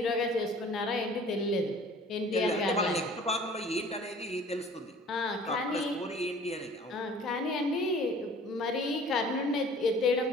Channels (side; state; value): both; normal; correlation 0.49